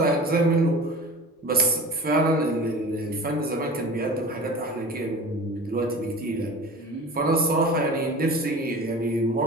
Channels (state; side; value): normal; both; correlation 0.37